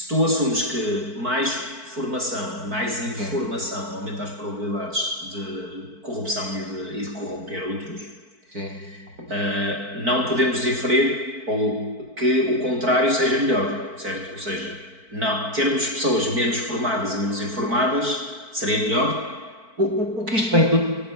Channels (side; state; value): left; late; 4.5 ms